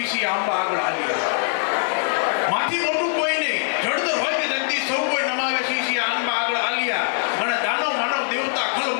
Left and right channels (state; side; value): silent; right; digital silence